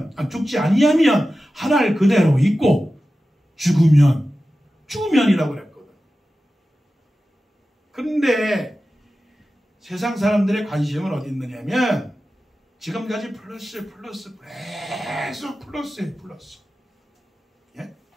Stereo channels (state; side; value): normal; both; correlation 0.94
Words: 아니하면 한 알 그대로 있고, 죽으면이라고 그랬거든. 그런데 세상 사람들의 관심은 어디 있느냐면 지금까지 플러스 계속 플러스. 예?